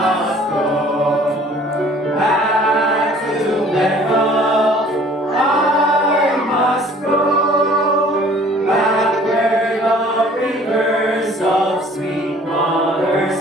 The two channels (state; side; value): normal; both; correlation 0.53